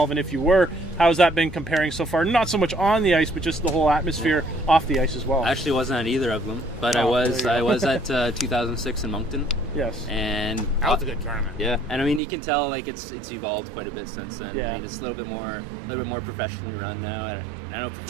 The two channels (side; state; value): left; drops out; at 12.2 s